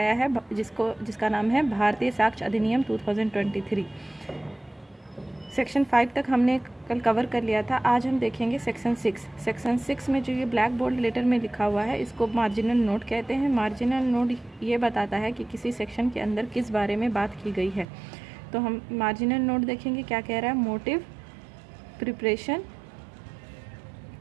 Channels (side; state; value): left; drops out; at 17.9 s